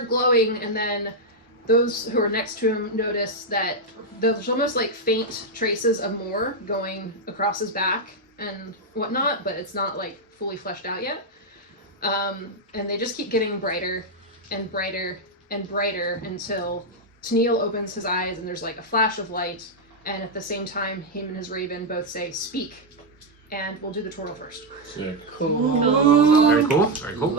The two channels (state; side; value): normal; both; correlation 0.01